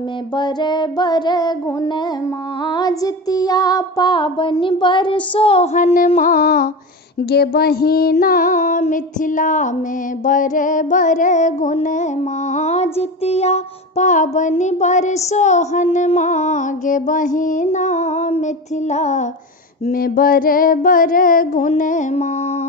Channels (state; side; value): normal; both; correlation 0.24